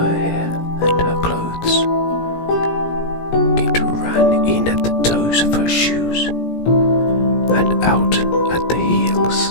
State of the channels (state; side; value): late; right; 17 ms